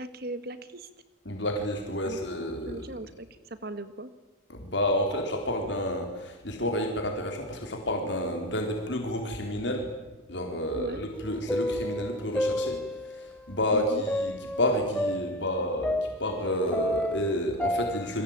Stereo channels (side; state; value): both; normal; correlation 0.18